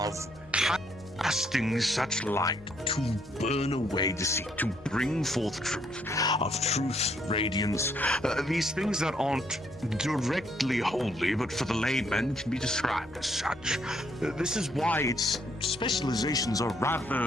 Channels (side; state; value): left; noise; hum, 24 dB below the sound